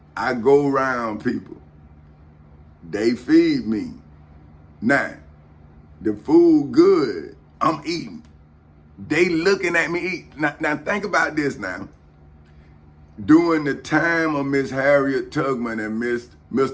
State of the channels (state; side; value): identical; both; correlation 1.00